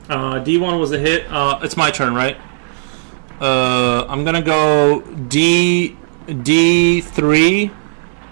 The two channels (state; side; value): silent; left; 65 dB below the other